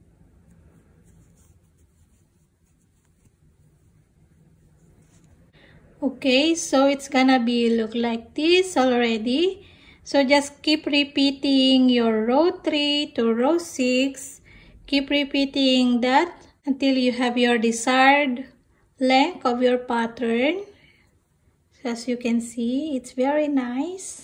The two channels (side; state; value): both; identical; correlation 1.00